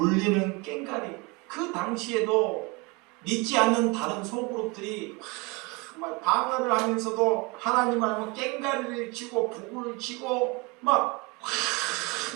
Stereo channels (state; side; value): quieter; left; 27.5 dB